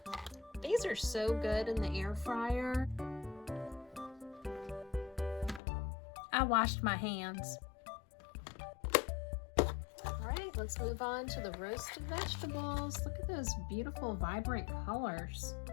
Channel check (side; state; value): right; drops out; at 5.6 s